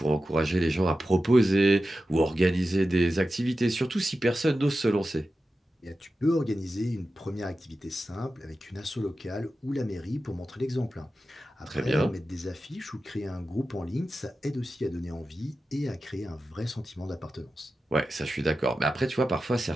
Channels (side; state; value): both; normal; correlation 0.93